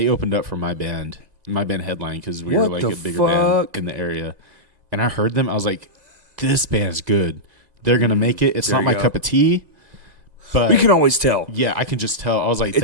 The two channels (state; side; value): late; left; 1.9 ms